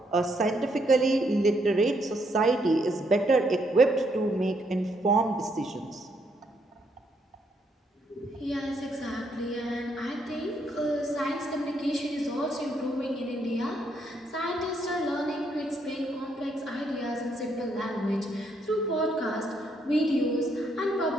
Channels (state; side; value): normal; both; correlation 0.74